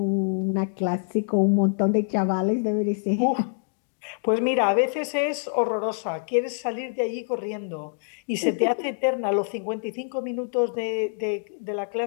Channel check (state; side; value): silent; right; digital silence